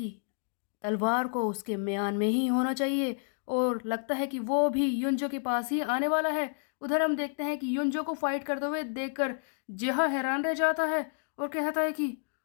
तलवार को उसके म्यान में ही होना चाहिए, और लगता है कि वो भी युंजो के पास ही आने वाला है। उधर हम देखते हैं कि युंजो को फाइट करते हुए देखकर जिहा हैरान रह जाता है और कहता है कि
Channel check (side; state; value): right; silent; digital silence